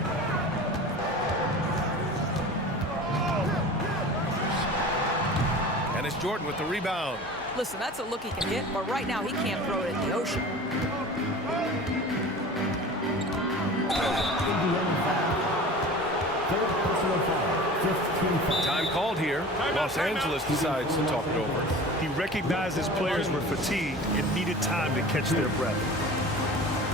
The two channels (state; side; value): normal; both; correlation 0.38